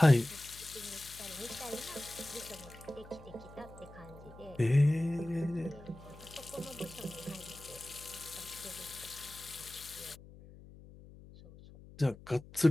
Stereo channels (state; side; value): noise; left; hum, 19 dB below the sound